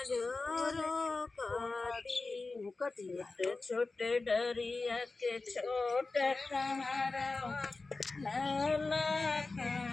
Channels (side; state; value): right; quieter; 3.6 dB